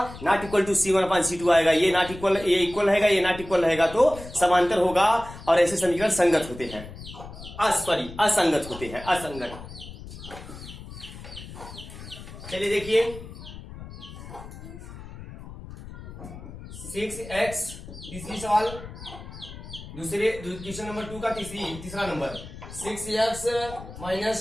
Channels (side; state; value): left; noise; rumble, 14 dB below the sound